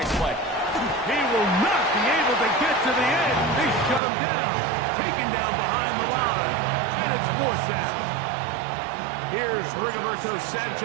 play. He will not be able to get to the end. They shut him down, taken down behind the line, and it's fourth down. Here's Rigoberto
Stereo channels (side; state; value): left; drops out; at 4.0 s